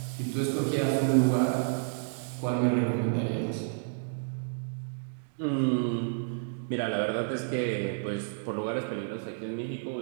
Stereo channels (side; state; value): left; silent; digital silence